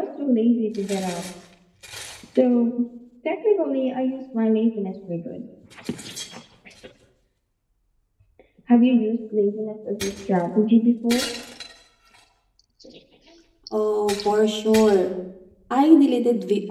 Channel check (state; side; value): identical; both; correlation 1.00